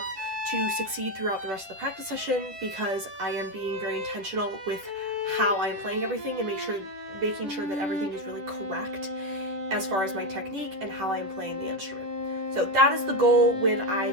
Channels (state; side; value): late; left; 11 ms